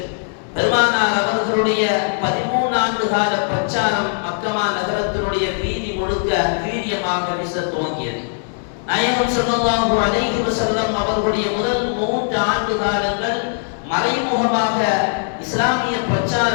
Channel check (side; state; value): right; silent; digital silence